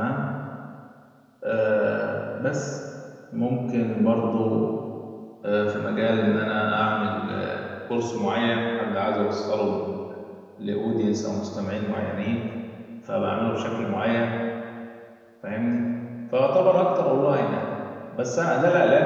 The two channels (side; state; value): both; identical; correlation 1.00